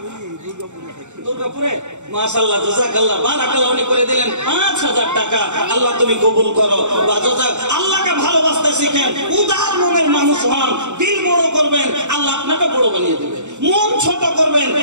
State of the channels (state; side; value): late; left; 0.84 ms